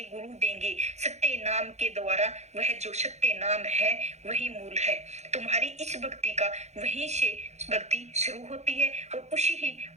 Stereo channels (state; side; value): late; left; 0.33 ms